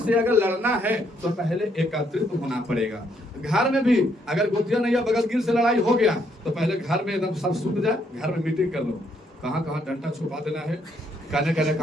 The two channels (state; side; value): normal; both; correlation 0.72